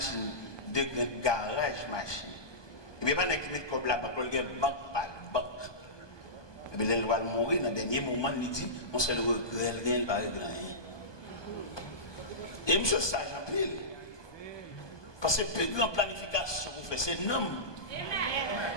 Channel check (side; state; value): right; late; 1.2 ms